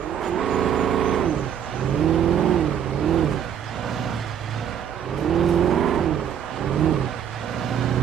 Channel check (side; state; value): left; quieter; 8.9 dB